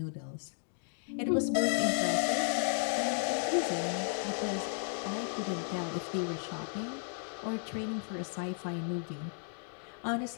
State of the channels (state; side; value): silent; right; 55 dB below the other